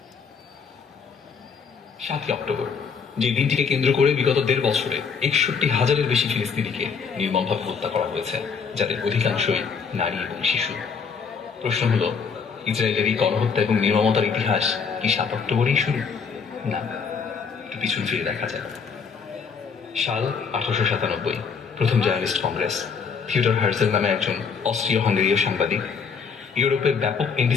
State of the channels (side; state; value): right; quieter; 5.9 dB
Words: 7 অক্টোবর, যে দিনটিকে কেন্দ্র করে বিগত 1.5 বছরে 61,000-এর বেশি ফিলিস্তিনিকে নির্মমভাবে হত্যা করা হয়েছে, যাদের অধিকাংশই নারী এবং শিশু। প্রশ্ন হলো, ইসরায়েলের এই গণহত্যা এবং নির্মমতার ইতিহাস কি 7 অক্টোবরেই শুরু? না, একটু পিছন ফিরে দেখা যায়। সাল 1897, প্রথম জার্নালিস্ট কংগ্রেস। থিওডর হার্জেল নামে একজন অস্ট্রীয়-হাঙ্গেরীয় সাংবাদিক ইউরোপের ব্যাপক